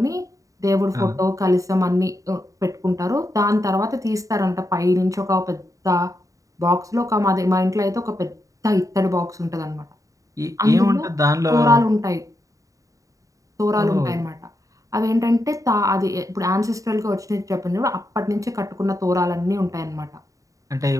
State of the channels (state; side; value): late; left; 0.16 ms